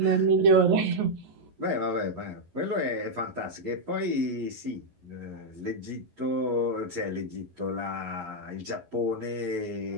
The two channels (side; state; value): left; late; 11 ms